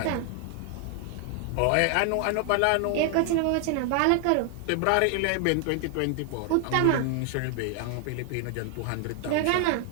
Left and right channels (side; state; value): both; different; correlation 0.00